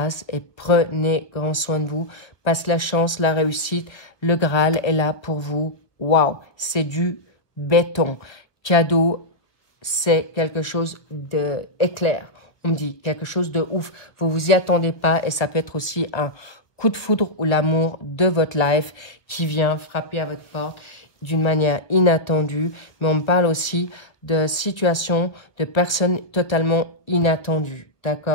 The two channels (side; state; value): right; late; 1.2 ms